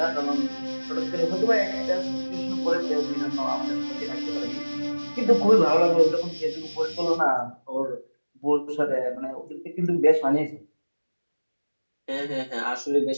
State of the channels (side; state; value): both; inverted; correlation -1.00